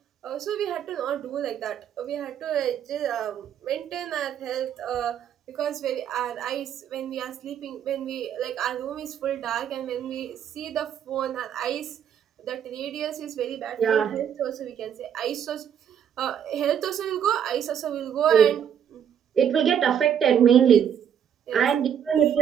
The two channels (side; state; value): left; quieter; 8.8 dB